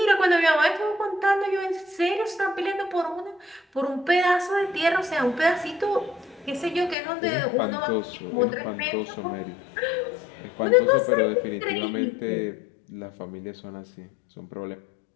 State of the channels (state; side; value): drops out; right; at 7.0 s